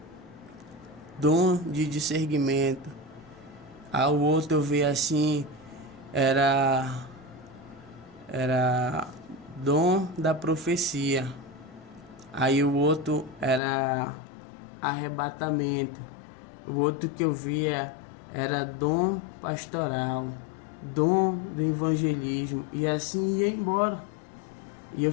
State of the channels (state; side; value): drops out; right; at 13.6 s